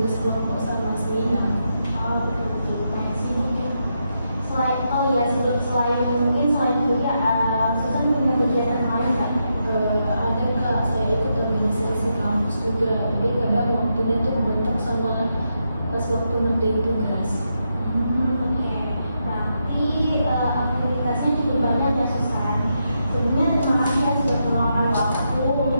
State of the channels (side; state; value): both; inverted; correlation -0.83